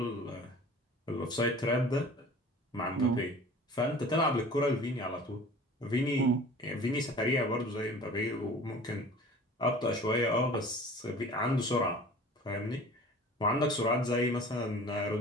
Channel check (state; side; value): normal; both; correlation 0.43